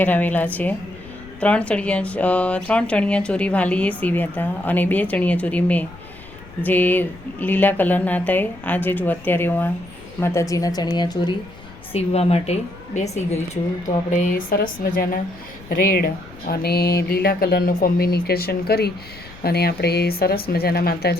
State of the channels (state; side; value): noise; left; rumble, 20 dB below the sound